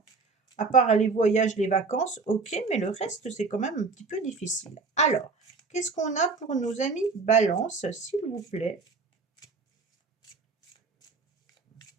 À part les voyages, les vacances, OK, mais le reste, c'est quand même un petit peu difficile. Alors, qu'est-ce qu'on a pour nos amis Balance, s'il vous plaît?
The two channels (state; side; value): quieter; left; 4.3 dB